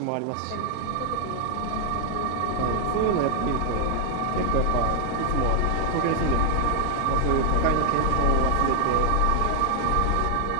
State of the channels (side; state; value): both; different; correlation 0.01